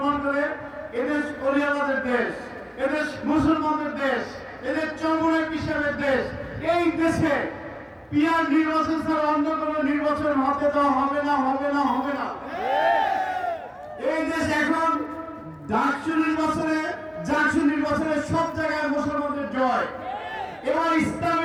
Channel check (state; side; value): identical; both; correlation 1.00